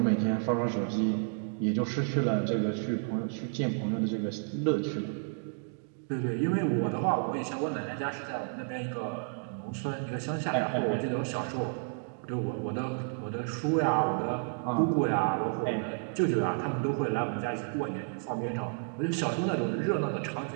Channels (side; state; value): left; silent; 57 dB below the other